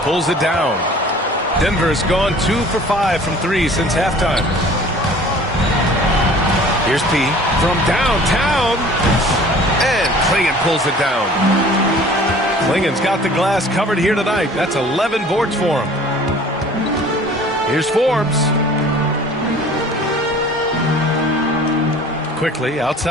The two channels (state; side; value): normal; both; correlation 0.48